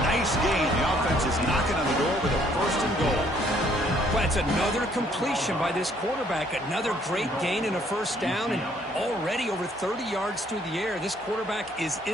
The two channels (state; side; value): normal; both; correlation 0.64